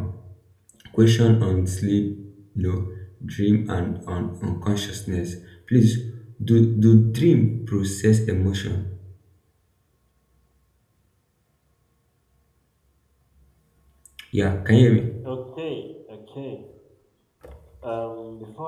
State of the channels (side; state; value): both; identical; correlation 1.00